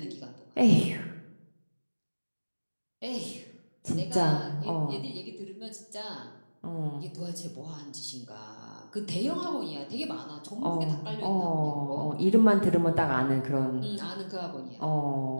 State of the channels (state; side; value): inverted; both; correlation -1.00